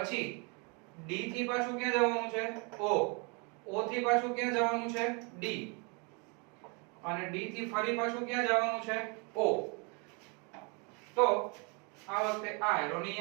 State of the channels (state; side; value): quieter; left; 32.8 dB